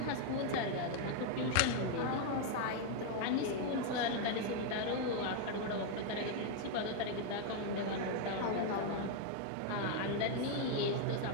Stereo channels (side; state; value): both; different; correlation 0.01